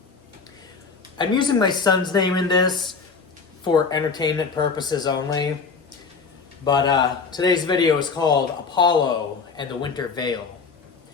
I'm using my son's name in this for entertainment purposes only, but today's video is called Apollo and the Winter Veil.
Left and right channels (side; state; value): right; quieter; 5.0 dB